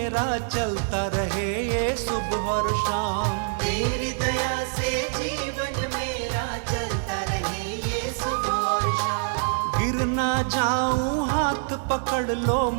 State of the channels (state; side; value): silent; left; digital silence